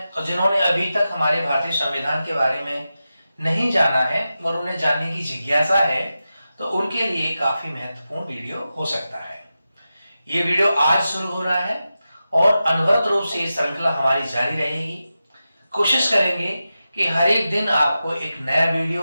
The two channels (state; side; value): inverted; both; correlation -0.92